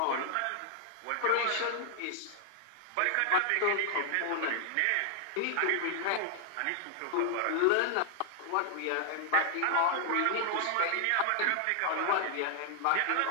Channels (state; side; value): different; both; correlation 0.00